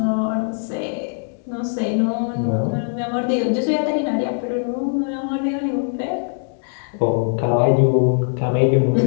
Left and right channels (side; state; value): right; silent; digital silence